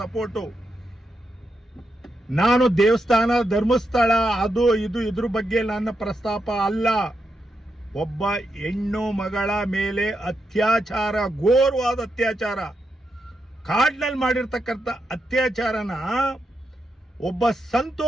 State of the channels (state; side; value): normal; both; correlation 0.84